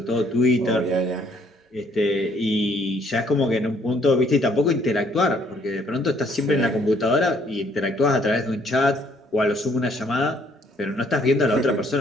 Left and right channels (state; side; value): normal; both; correlation 0.65